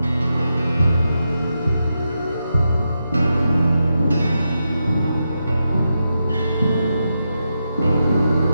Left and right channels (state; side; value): inverted; both; correlation -0.86